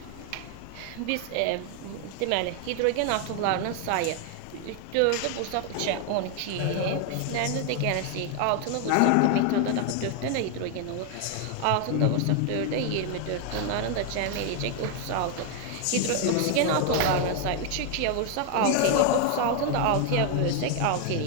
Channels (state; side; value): different; both; correlation 0.01